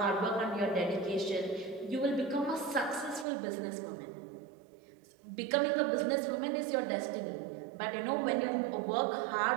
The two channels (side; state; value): left; drops out; at 3.2 s